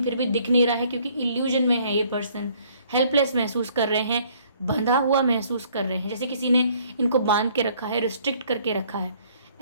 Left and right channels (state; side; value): inverted; both; correlation -0.61